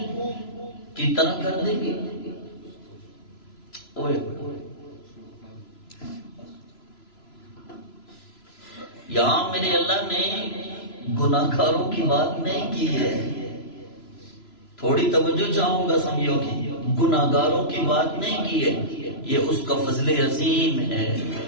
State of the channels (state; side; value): late; right; 3.0 ms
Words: کی طرح کر دیں گے؟ یہاں میرے اللہ نے گناہگاروں کی بات نہیں کی ہے، تھوڑی توجہ چاہوں گا سمجھو کی، گناہگاروں کی بات نہیں کی ہے، یہ اس کا فضل عظیم ہے۔